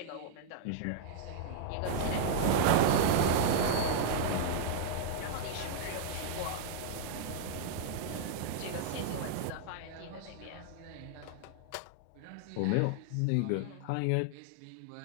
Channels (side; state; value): both; different; correlation -0.01